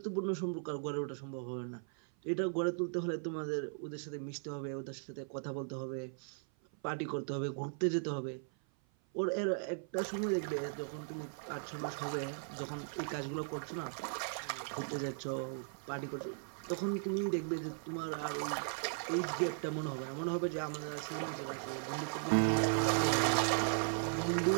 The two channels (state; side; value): silent; left; 53 dB below the other